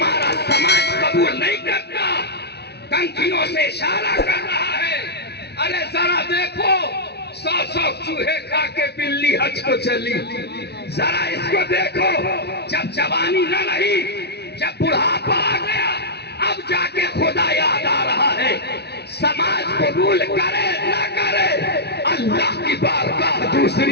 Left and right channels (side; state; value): right; late; 0.48 ms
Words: سماج قبول نہیں کرتا، کنکھیوں سے اشارہ کر رہا ہے، ارے ذرا دیکھو 100 چوہے کھا کے بلی حج کو چلی، ذرا اس کو دیکھو، جب جوانی نہ رہی، جب بڑھاپا آ گیا، اب جا کے خدا یاد آ رہا ہے۔ سماج قبول کرے نہ کرے، اللہ کی بارگاہ